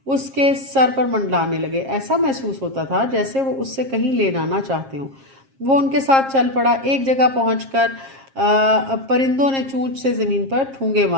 اس کے سر پر منڈلانے لگے. ایسا محسوس ہوتا تھا جیسے وہ اس سے کہیں لے نہ چاہتے ہوں. وہ ان کے ساتھ چل پڑا. ایک جگہ پہنچ کر پرندوں نے چونچ سے زمین پر ٹھونگے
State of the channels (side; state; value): left; late; 7.4 ms